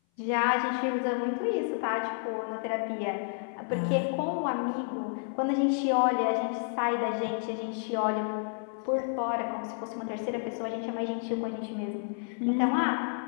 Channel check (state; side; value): silent; right; 55 dB below the other